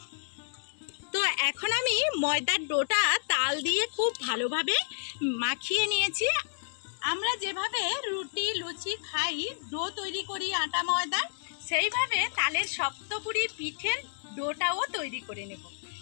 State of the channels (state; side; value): silent; right; digital silence